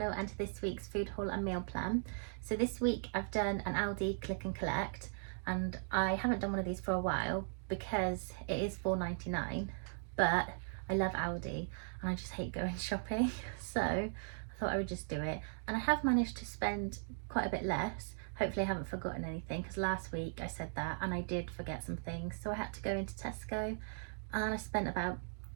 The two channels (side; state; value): left; silent; digital silence